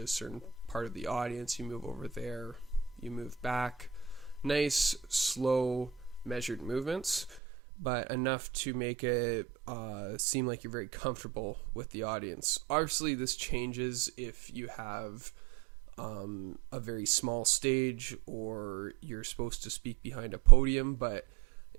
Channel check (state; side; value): drops out; left; at 7.4 s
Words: a certain part of the audience, you move over there, you move back. Nice, slow, measured movements, but enough to make it seem like you're very comfortable with the audience. Obviously, this changes if you have a very small stage or you're supposed to speak behind a podium, but